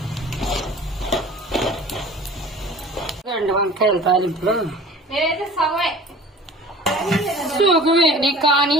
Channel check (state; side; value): normal; both; correlation 0.44